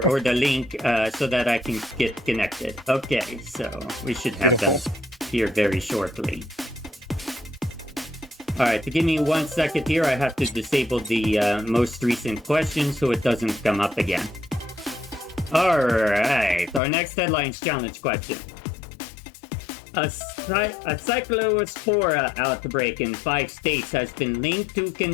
the link so that I can get connected. Okay, so we should have them here very shortly. All right, give me 1 second here. I have to disable the most recent question so it doesn't come up again. All right, our next headlines challenge question. A cyclospora outbreak in 5 states has been linked to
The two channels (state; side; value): drops out; right; at 16.8 s